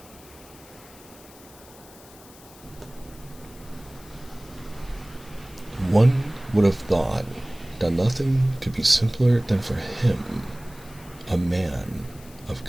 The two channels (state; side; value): noise; left; hiss, 22 dB below the sound